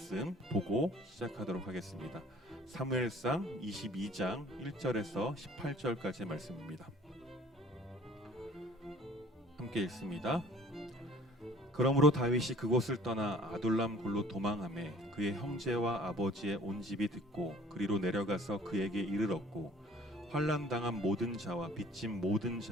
보고 시작하도록 하겠습니다. 사무엘상 22장 1절에서 18절까지의 말씀입니다. 함께 읽습니다. 그러므로 다윗이 그곳을 떠나 아둘람 굴로 도망하매 그의 형제와 아버지의 온 집이 듣고 그리로 내려가서 그에게 이르렀고 환난 당한 모든 자와 빚진 모든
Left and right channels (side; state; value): both; normal; correlation 0.50